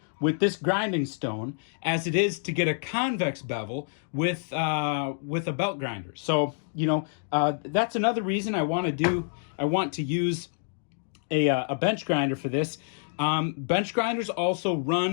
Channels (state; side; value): silent; right; digital silence